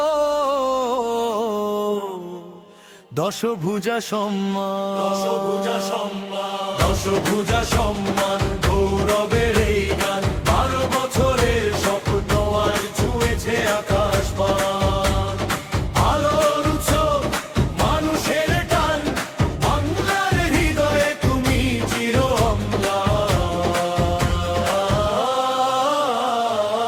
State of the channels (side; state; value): both; identical; correlation 1.00